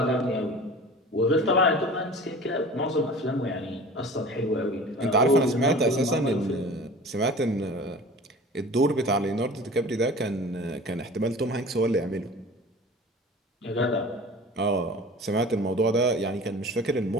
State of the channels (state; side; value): normal; both; correlation 0.40